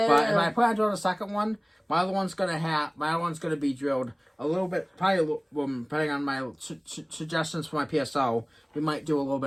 if I plan on doing a second one, my other one's gonna be drilled a little bit, probably depending on my suggestions for my PSO. We might do a little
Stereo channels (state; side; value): identical; both; correlation 1.00